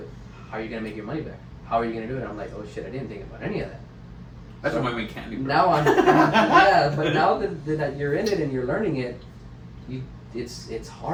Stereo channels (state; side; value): identical; both; correlation 1.00